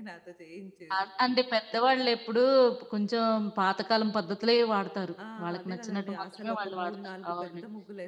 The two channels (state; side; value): identical; both; correlation 1.00